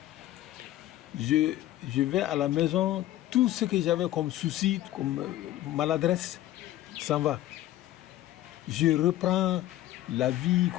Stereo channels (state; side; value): quieter; right; 14.4 dB